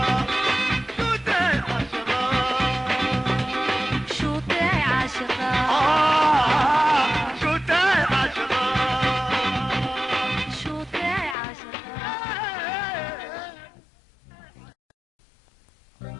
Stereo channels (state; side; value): drops out; right; at 11.4 s